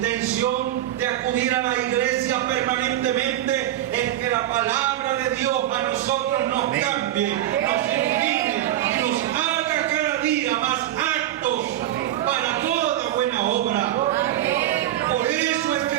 de acudir a la iglesia permanentemente es que la palabra de Dios a nosotros nos cambie, nos ilumine y nos haga cada día más aptos para toda buena obra. Por eso es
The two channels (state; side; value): quieter; left; 13.0 dB